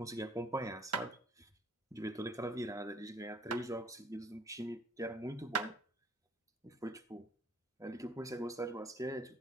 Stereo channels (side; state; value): both; normal; correlation 0.57